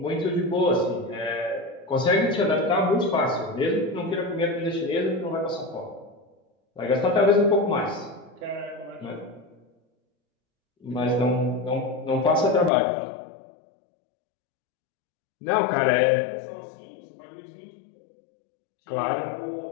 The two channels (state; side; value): drops out; right; at 12.7 s